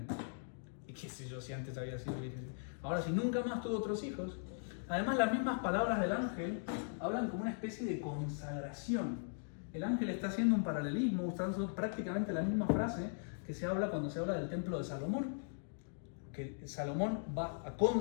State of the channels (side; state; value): right; silent; digital silence